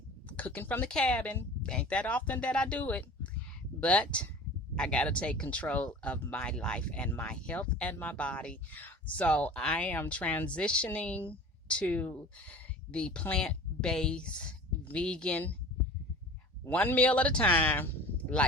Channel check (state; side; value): normal; both; correlation 0.40